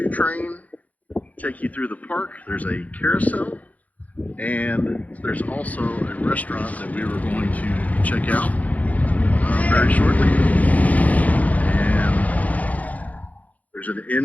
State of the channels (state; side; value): late; right; 0.075 ms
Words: train. Take you through the park. There's a carousel. And there's also a restaurant that we were going to check out very shortly. And there's an